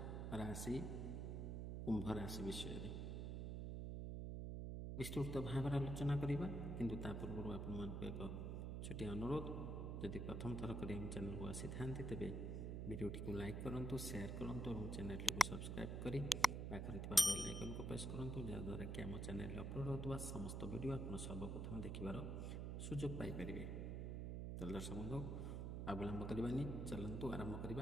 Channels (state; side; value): noise; right; hum, 2 dB below the sound